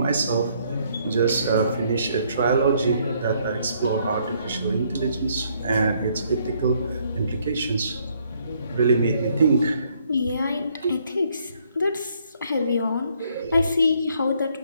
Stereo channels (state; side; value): inverted; both; correlation -0.68